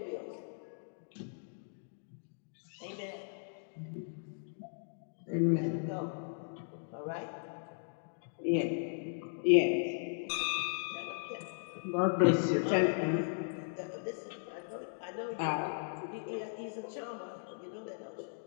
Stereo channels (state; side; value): silent; right; digital silence